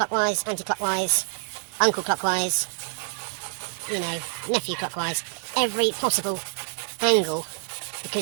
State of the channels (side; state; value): left; silent; digital silence